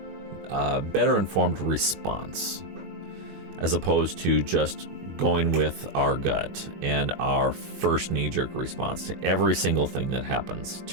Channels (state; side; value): late; left; 21 ms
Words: response, as opposed to just going with our gut and our first knee-jerk response to every single thing that happens